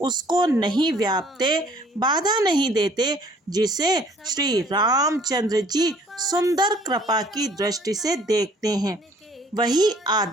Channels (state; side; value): normal; both; correlation 0.57